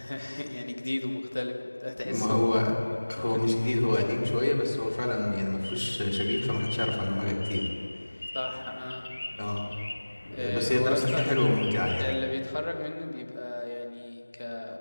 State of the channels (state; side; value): inverted; both; correlation -1.00